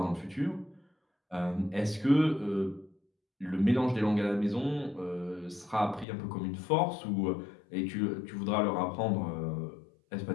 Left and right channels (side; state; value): right; drops out; at 6.1 s